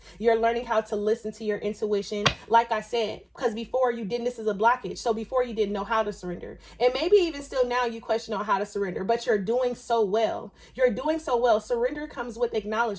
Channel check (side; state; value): both; identical; correlation 1.00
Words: You're learning how to listen to your intuition. Like I said, because before you didn't, this is a blockage. So before you didn't know how to surrender. And maybe even still now you question on how to surrender, but you're doing so well. You're doing so well. Surrender comes with